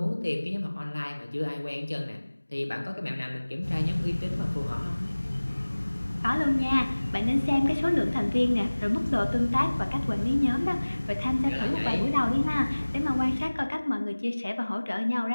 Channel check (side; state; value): both; inverted; correlation -1.00